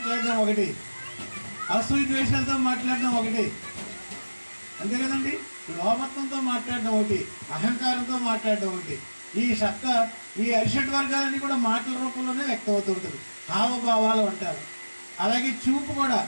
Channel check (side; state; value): both; inverted; correlation -1.00